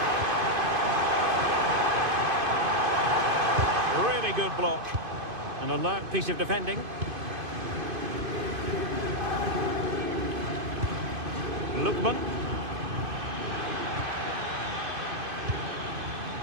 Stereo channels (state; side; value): late; left; 2.5 ms